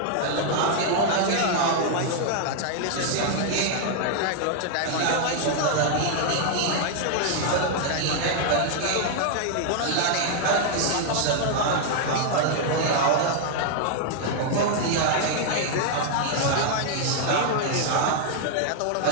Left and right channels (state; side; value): different; both; correlation 0.00